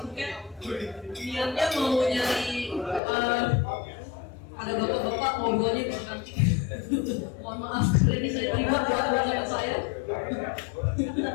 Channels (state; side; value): drops out; right; at 3.0 s